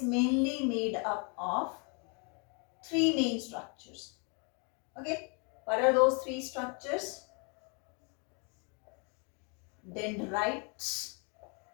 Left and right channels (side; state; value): right; quieter; 35.6 dB